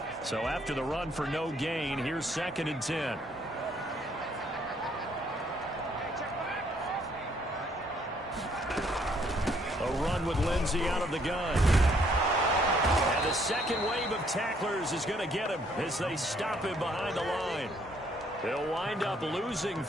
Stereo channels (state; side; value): normal; both; correlation 0.67